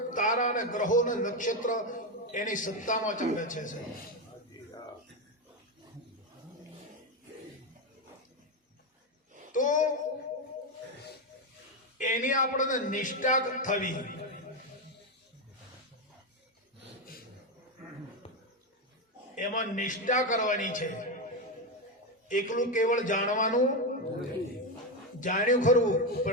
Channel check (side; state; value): both; normal; correlation 0.10